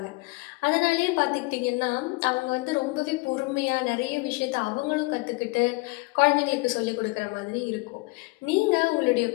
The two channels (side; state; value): right; quieter; 25.6 dB